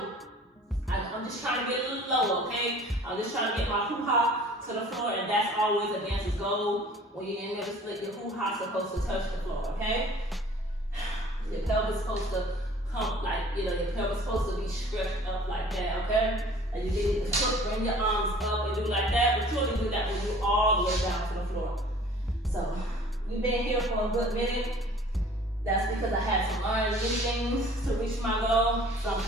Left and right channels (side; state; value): both; normal; correlation 0.50